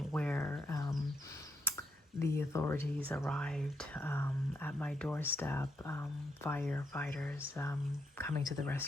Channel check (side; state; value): both; normal; correlation 0.78